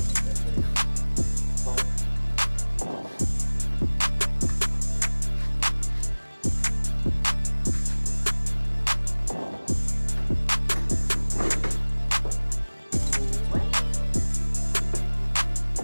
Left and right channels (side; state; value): both; inverted; correlation -1.00